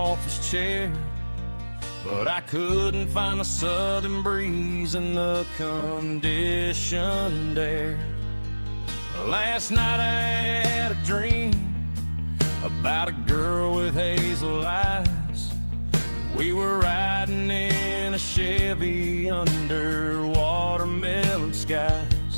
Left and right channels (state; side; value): inverted; both; correlation -1.00